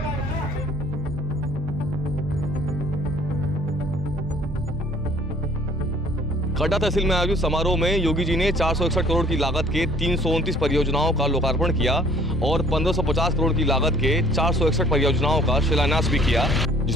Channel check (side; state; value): both; normal; correlation 0.56